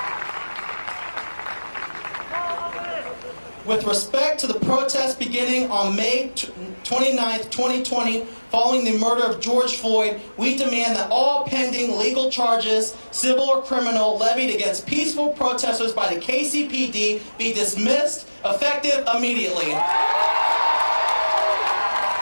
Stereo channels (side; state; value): both; inverted; correlation -1.00